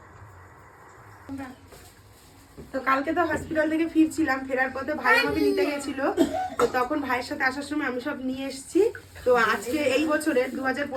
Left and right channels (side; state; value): both; identical; correlation 1.00